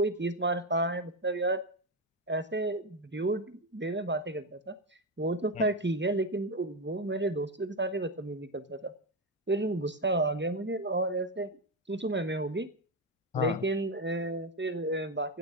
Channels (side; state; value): both; normal; correlation 0.11